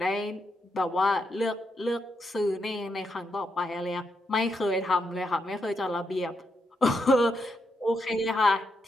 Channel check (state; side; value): normal; both; correlation 0.81